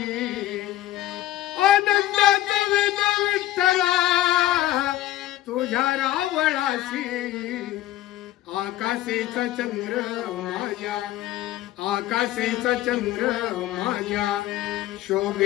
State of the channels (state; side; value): quieter; right; 14.5 dB